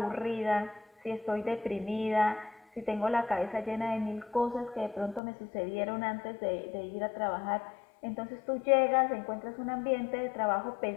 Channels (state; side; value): drops out; right; at 5.2 s